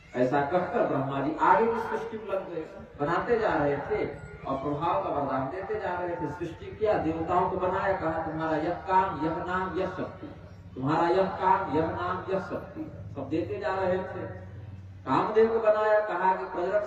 ऐसा कहकर ब्रह्मा जी आगे की सृष्टि में लग गए, बनाते जा रहे थे और प्रभाव का वरदान देते जा रहे थे। सृष्टि किया, देवताओं को बनाया, कहा तुम्हारा यह काम, यह नाम, यह शक्ति, तुम्हारा यह काम, यह नाम, यह शक्ति, सब देते जा रहे थे। कामदेव को बनाया, कहा कि प्रजनन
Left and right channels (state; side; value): identical; both; correlation 1.00